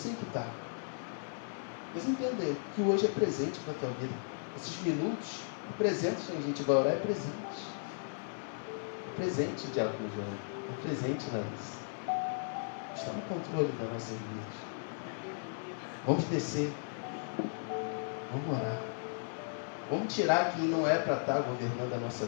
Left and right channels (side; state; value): right; silent; 54 dB below the other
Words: que está. Mas entender que hoje é presente para a tua vida. Esses minutos, presentes, a gente vai orar, é presente. É presente, Diácono João. É presente, Larissa. Está no controle da nossa vida. Vamos descer. Vamos orar. Vamos tirar quem não é para estar governando a nossa